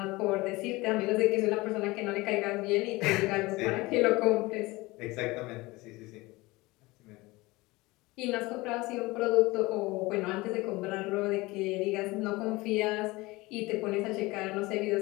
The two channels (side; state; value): right; quieter; 21.7 dB